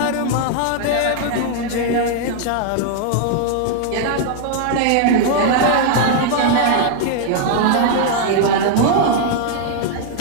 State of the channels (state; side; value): different; both; correlation 0.00